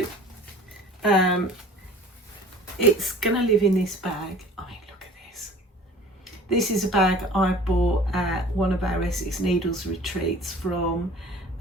it's going to live in this bag. I mean, look at this. This is a bag I bought at one of our Essex Needles retreats from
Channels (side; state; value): both; normal; correlation 0.46